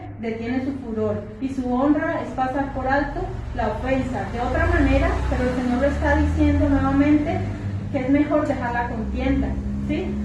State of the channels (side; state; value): both; identical; correlation 1.00